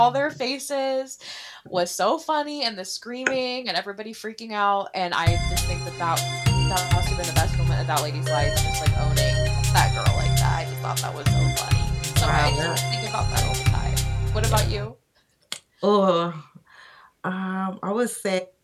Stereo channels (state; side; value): identical; both; correlation 1.00